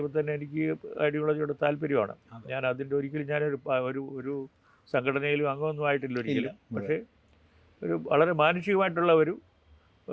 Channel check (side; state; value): both; identical; correlation 1.00